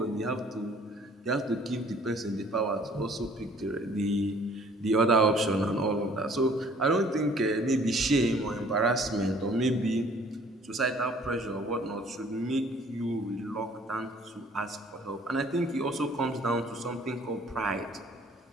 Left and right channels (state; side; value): normal; both; correlation 0.55